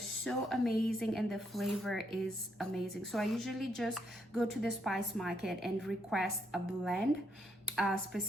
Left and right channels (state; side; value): normal; both; correlation 0.76